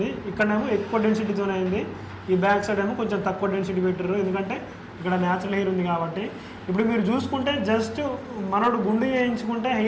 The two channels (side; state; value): both; identical; correlation 1.00